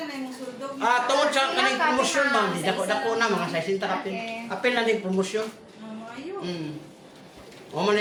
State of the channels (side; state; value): both; identical; correlation 1.00